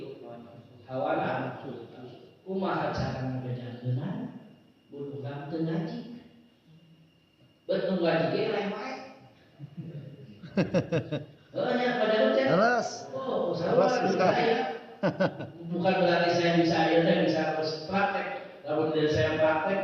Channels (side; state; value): both; identical; correlation 1.00